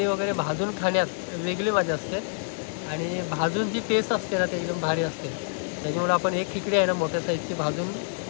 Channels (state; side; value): silent; right; 60 dB below the other